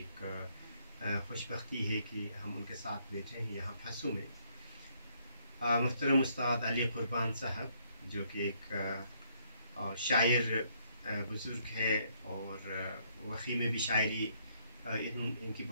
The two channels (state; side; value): inverted; both; correlation -0.70